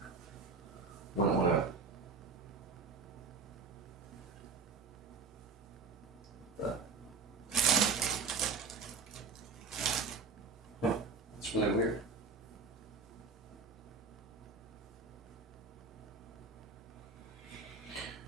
Might want to. It's really weird.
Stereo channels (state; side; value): quieter; left; 4.6 dB